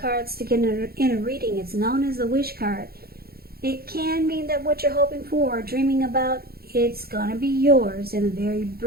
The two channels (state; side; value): late; left; 0.45 ms